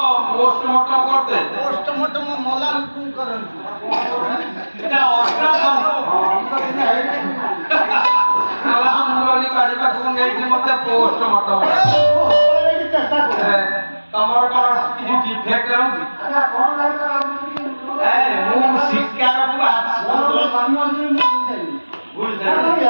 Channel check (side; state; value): both; inverted; correlation -1.00